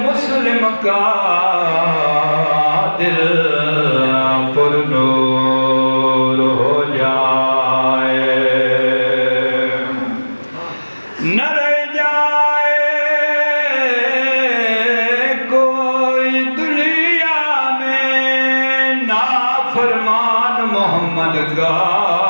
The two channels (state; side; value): inverted; both; correlation -1.00